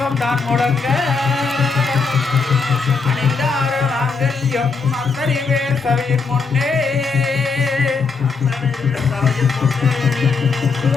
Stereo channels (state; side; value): quieter; right; 4.7 dB